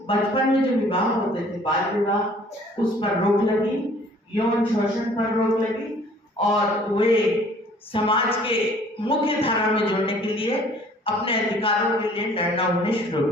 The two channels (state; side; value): normal; both; correlation 0.55